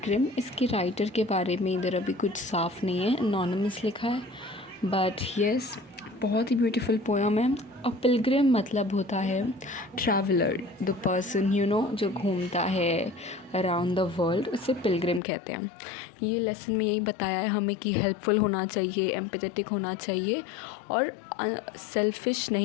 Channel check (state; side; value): drops out; right; at 15.2 s